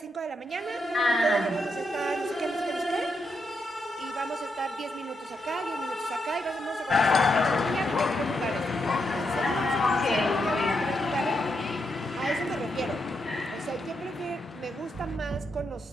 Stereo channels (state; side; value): normal; both; correlation 0.82